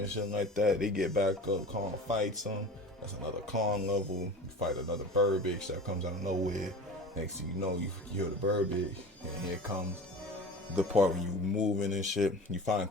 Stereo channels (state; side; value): normal; both; correlation 0.37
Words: shit like that. They get back up. Kong fights them. That's another Kong level. You fight another bird bitch that comes out of nowhere. Next thing you know, you hear the bird bitch. And here comes the part where you moving and shit. You